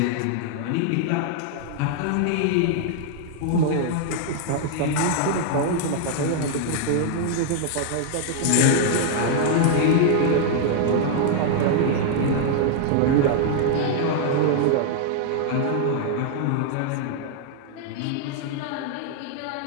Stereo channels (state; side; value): different; both; correlation 0.00